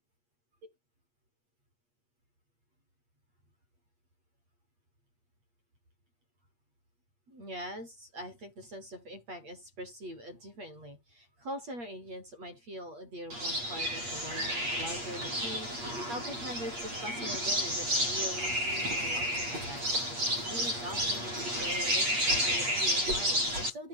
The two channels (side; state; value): left; late; 8.5 ms